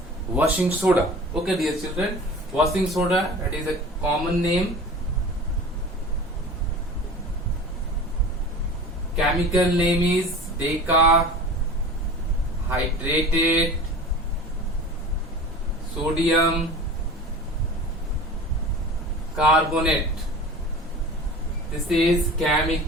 washing soda. Okay, dear children, washing soda, that is a common name. Chemical name is decahydrated sodium carbonate. This is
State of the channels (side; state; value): both; normal; correlation 0.38